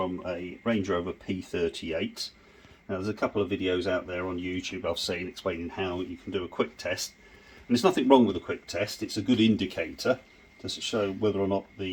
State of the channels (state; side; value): identical; both; correlation 1.00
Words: a Range Rover P38. Now there's a couple of videos out there on YouTube I've seen explaining how you can do a quick test. And there's nothing wrong with a quick test, it's a good indicator to show whether or not